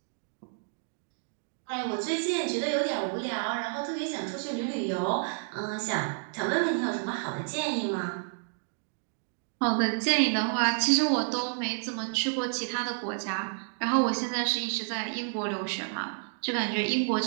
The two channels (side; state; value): left; silent; digital silence